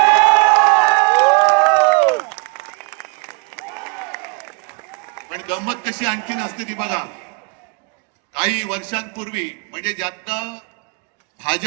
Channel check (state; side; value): quieter; left; 32.2 dB